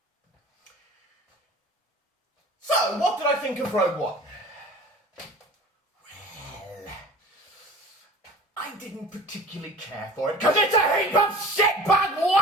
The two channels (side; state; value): both; normal; correlation 0.42